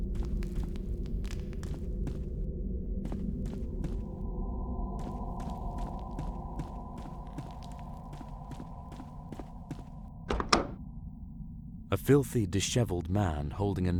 A filthy, disheveled man holding a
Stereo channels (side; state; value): both; identical; correlation 1.00